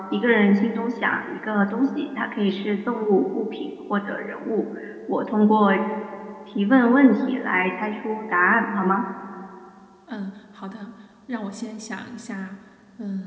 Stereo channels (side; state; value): both; identical; correlation 1.00